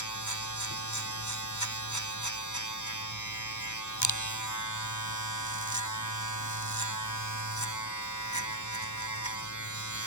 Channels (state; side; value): late; right; 0.83 ms